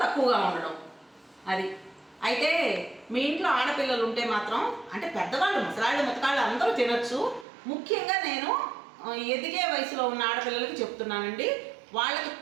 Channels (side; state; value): left; drops out; at 7.5 s